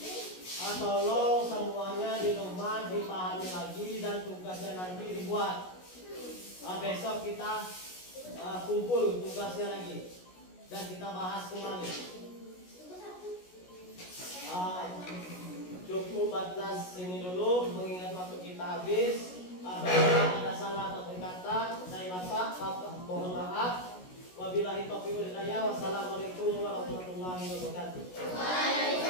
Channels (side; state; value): right; late; 16 ms